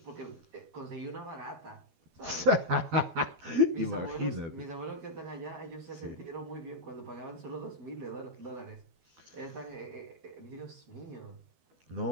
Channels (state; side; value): late; left; 13 ms